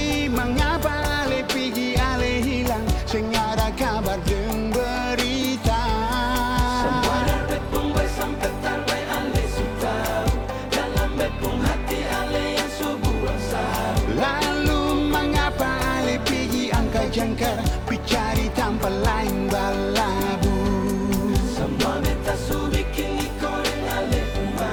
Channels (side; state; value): both; identical; correlation 1.00